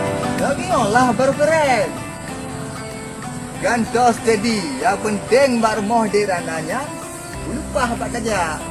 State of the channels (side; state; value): both; identical; correlation 1.00